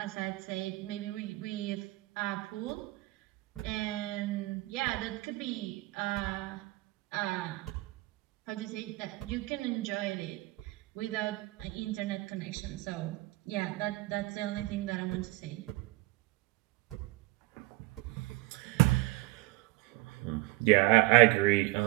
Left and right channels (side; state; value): left; quieter; 20.8 dB